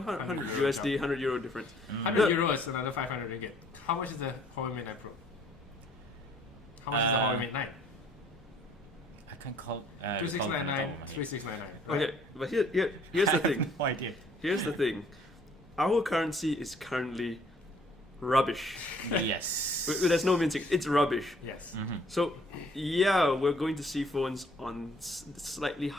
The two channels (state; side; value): normal; both; correlation 0.60